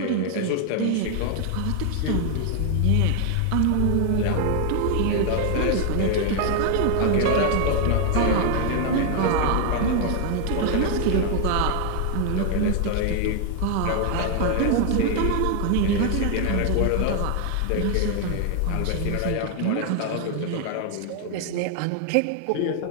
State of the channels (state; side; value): different; both; correlation 0.00